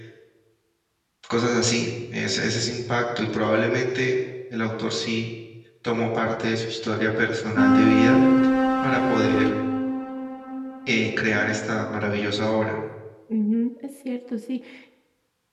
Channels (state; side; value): identical; both; correlation 1.00